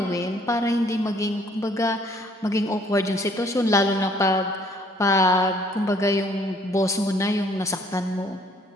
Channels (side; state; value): both; normal; correlation 0.61